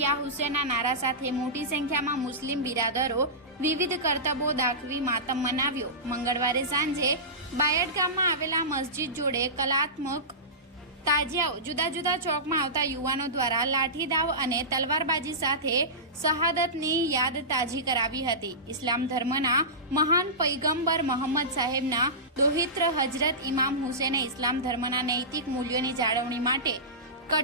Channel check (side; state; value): both; normal; correlation -0.19